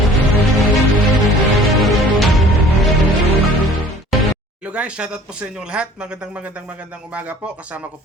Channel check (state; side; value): normal; both; correlation 0.50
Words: Hello guys, shoutout po sa inyong lahat. Magandang umaga po. Kasama ko